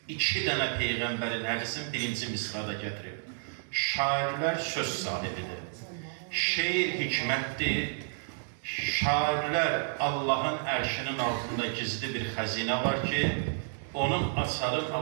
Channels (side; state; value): left; silent; digital silence